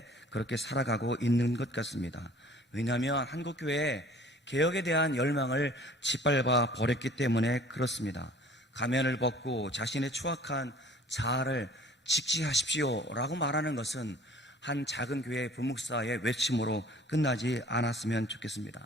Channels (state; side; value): normal; both; correlation 0.50